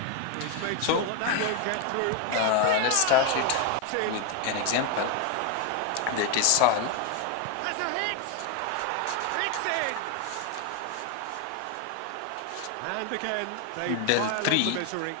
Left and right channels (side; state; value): both; different; correlation 0.01